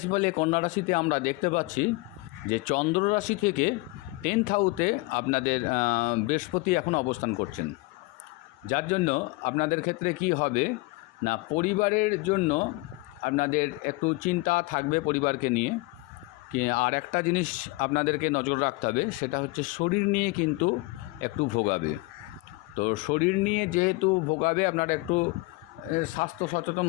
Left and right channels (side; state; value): right; quieter; 23.7 dB